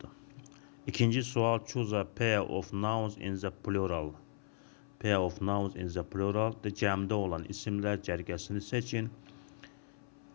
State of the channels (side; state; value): right; silent; 53 dB below the other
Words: İkinci sual: choose a pair of nouns in the plural. Pair of nouns in the plural. Cəmdə olan isimlər cərgəsini seçin.